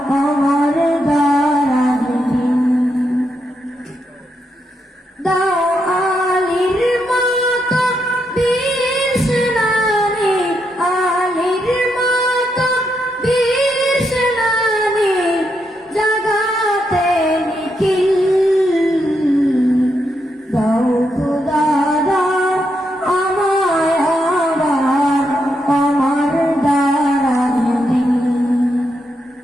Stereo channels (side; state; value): both; normal; correlation 0.81